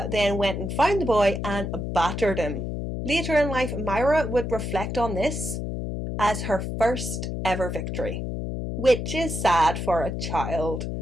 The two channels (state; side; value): noise; left; hum, 4 dB below the sound